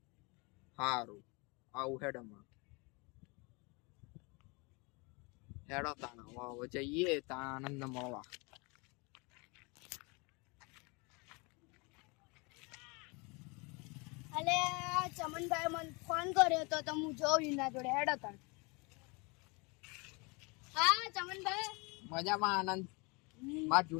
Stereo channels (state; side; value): quieter; right; 29.1 dB